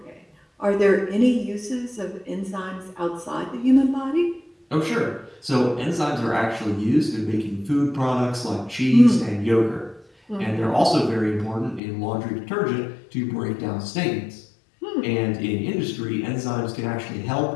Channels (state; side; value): drops out; right; at 11.8 s